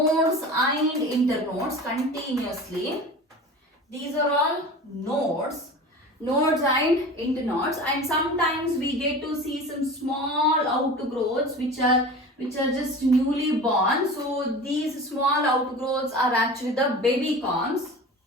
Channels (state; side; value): normal; both; correlation 0.35